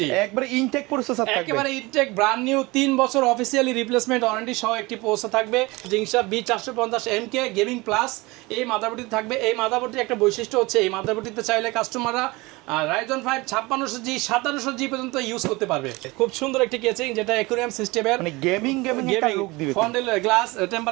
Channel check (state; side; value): quieter; left; 23.1 dB